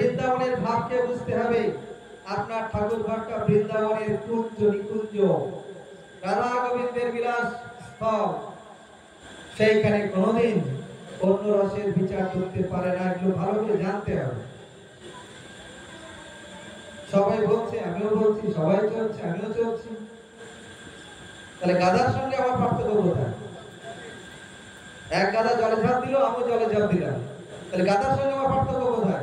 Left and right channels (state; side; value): identical; both; correlation 1.00